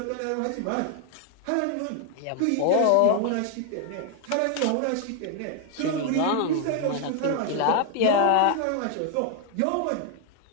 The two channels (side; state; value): both; different; correlation 0.00